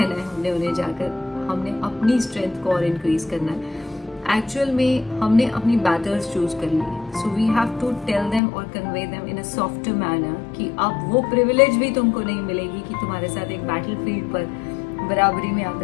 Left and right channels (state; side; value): drops out; right; at 8.4 s